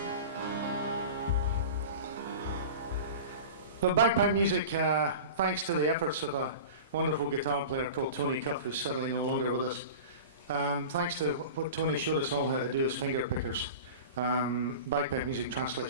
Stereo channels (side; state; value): both; inverted; correlation -0.34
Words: But bagpipe music, thanks to the efforts of a wonderful guitar player called Tony Cuff, who's sadly no longer with us, thanks to what Tony showed us all how to do as finger pickers, bagpipe music